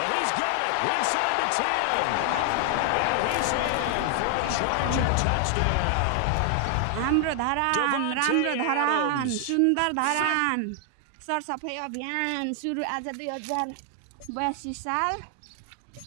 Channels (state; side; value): different; both; correlation 0.00